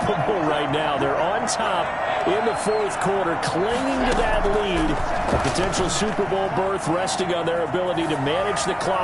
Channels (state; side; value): identical; both; correlation 1.00